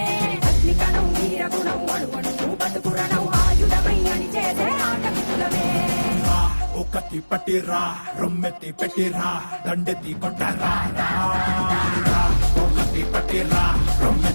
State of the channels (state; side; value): inverted; both; correlation -1.00